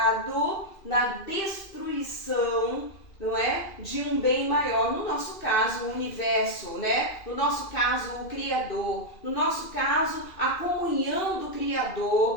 na destruição, não é, de um bem maior, no nosso caso o universo, né? No nosso caso o Criador, no nosso caso a comunhão do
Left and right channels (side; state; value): right; late; 2.4 ms